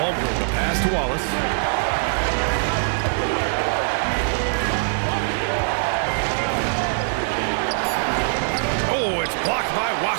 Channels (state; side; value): silent; left; 64 dB below the other